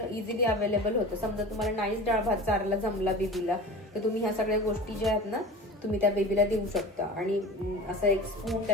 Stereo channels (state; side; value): normal; both; correlation 0.35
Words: इझिली अवेलेबल होतं. समजा तुम्हाला नाहीच डाळ भात चारायला जमला बेबीला तर तुम्ही ह्या सगळ्या गोष्टी ज्या आहेत ना तुम्ही त्या बेबीला देऊ शकता. आणि असं 1 स्पून